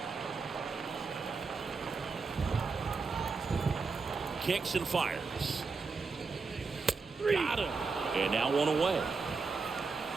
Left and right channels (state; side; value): quieter; left; 4.5 dB